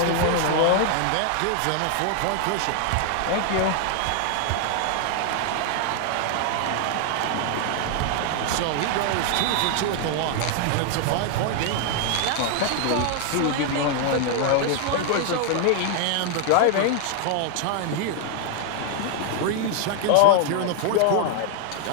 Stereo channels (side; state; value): both; different; correlation 0.00